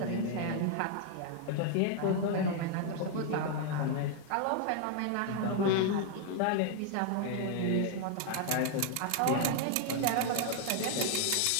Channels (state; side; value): different; both; correlation 0.00